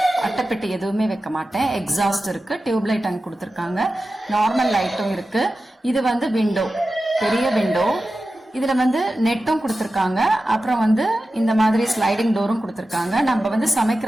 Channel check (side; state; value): both; normal; correlation 0.93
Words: அட்டைப்பெட்டி எதுவுமே வைக்க மாட்டேன். எக்ஸாஸ்ட் இருக்கு, டியூப் லைட் அங்கே கொடுத்துருக்காங்க, நார்மல் லைட்டும் இருக்கு. இது வந்து விண்டோ, பெரிய விண்டோ. இதுல வந்து நெட்டும் கொடுத்துருக்காங்க. அப்புறம் வந்து இந்த மாதிரி ஸ்லைடிங் டோரும் கொடுத்துருக்காங்க. நம்ம வந்து